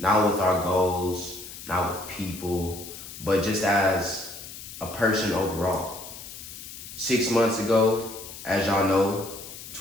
with our goals, not with people, but just as a person overall. 6 months ago, as y'all know,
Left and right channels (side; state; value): left; noise; hiss, 13 dB below the sound